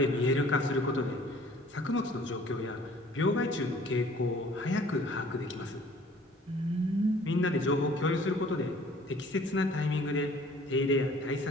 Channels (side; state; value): both; normal; correlation 0.53